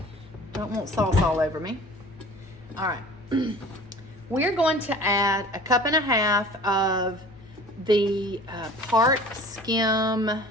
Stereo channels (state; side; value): noise; left; hum, 24 dB below the sound